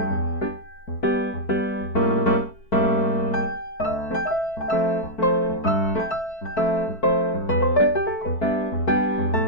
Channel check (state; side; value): late; right; 4.5 ms